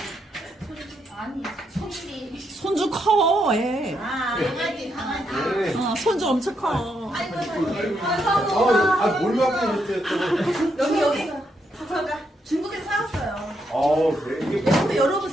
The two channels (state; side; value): normal; both; correlation 0.79